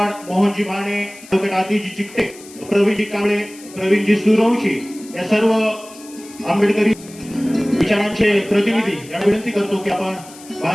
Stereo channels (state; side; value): noise; left; hiss, 20 dB below the sound